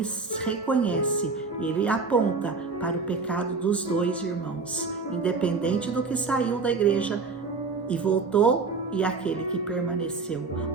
reconhece, ele aponta para o pecado dos dois irmãos, independente do que saiu da igreja e voltou e aquele que permaneceu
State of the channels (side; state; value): left; quieter; 4.4 dB